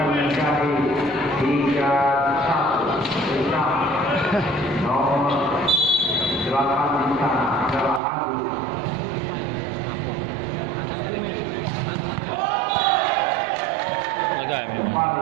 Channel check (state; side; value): drops out; left; at 8.0 s